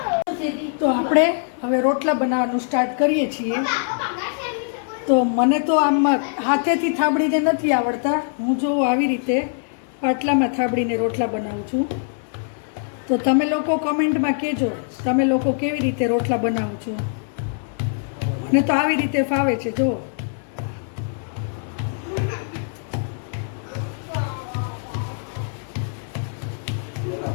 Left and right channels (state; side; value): silent; right; 64 dB below the other